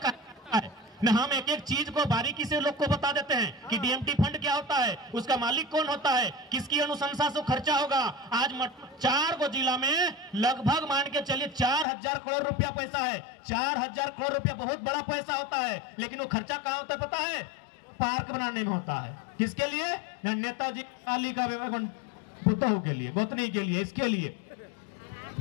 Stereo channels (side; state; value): right; drops out; at 11.9 s